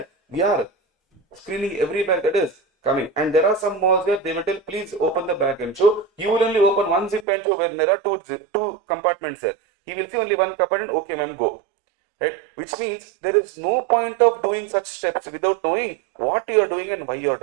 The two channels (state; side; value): drops out; left; at 7.2 s